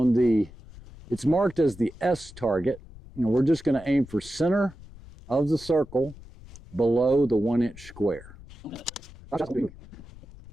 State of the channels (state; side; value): noise; left; rumble, 19 dB below the sound